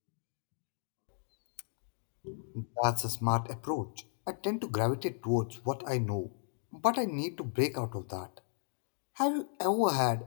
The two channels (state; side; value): silent; right; digital silence